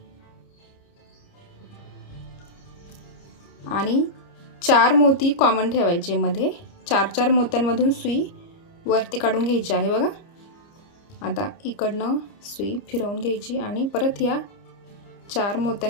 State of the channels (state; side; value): late; right; 30 ms